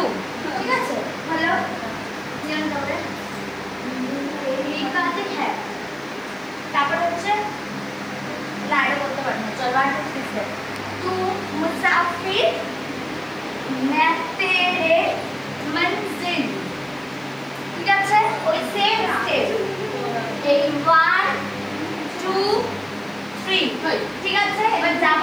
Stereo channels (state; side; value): noise; left; hiss, 30 dB below the sound